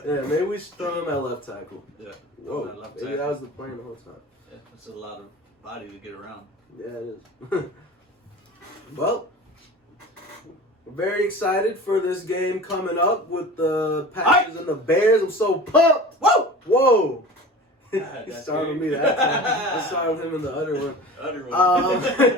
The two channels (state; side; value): normal; both; correlation 0.37